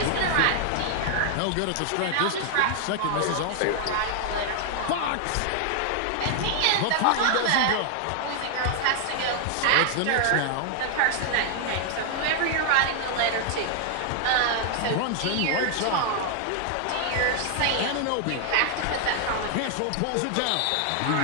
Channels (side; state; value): both; different; correlation 0.00